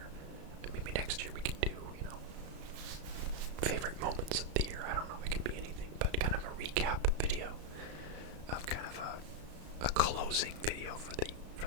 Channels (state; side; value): late; left; 34 ms